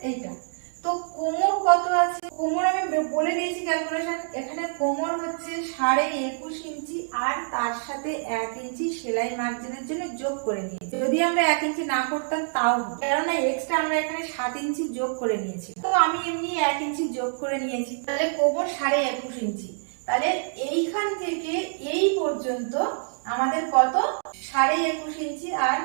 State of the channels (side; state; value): left; silent; digital silence